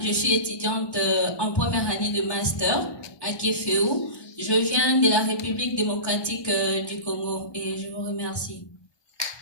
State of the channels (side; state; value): right; late; 1.1 ms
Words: je suis étudiante en première année de master à Kéféou. Je viens de la République démocratique du Congo et je vous remercie.